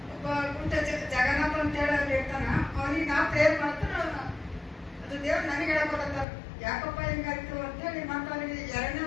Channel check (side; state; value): right; drops out; at 6.2 s